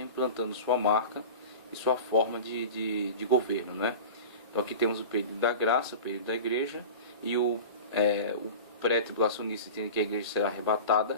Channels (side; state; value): both; inverted; correlation -0.33